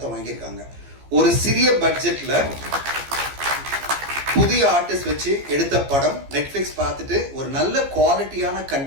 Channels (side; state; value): left; late; 15 ms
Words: வாங்கியிருக்காங்க. ஒரு சிறிய பட்ஜெட்ல புதிய ஆர்டிஸ்ட் வச்சு எடுத்த படம் நெட்ஃபிளிக்ஸ் பார்த்துட்டு ஒரு நல்ல குவாலிட்டியான